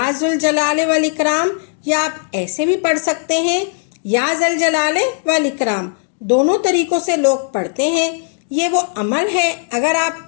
ذوالجلال والاکرام، یا آپ ایسے بھی پڑھ سکتے ہیں یا ذوالجلال والاکرام، دونوں طریقوں سے لوگ پڑھتے ہیں۔ یہ وہ عمل ہے، اگر آپ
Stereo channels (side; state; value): right; silent; digital silence